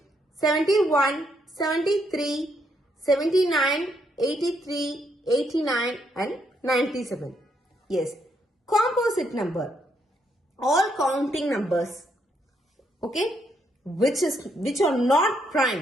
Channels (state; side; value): normal; both; correlation 0.75